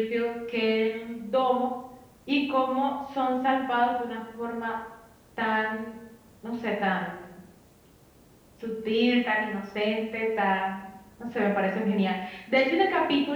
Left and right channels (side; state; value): both; identical; correlation 1.00